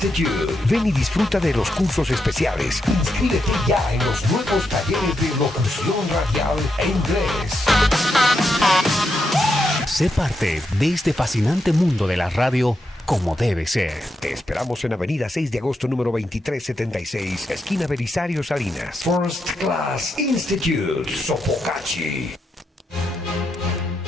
Ven y disfruta de los cursos especiales. Inscríbete ya en los nuevos talleres de locución radial e inglés. Sé parte de este fascinante mundo de la radio como debe ser. Te esperamos en Avenida 6 de agosto, número 2376, esquina Belisario Salinas. First Class Institute, Sopocachi.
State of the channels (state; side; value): normal; both; correlation 0.83